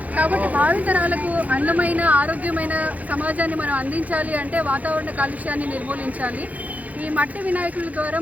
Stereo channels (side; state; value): left; late; 0.075 ms